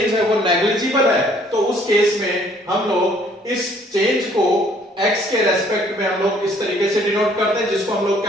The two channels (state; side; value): normal; both; correlation 0.61